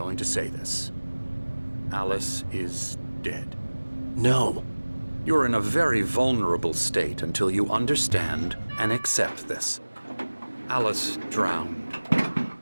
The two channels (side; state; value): both; inverted; correlation -1.00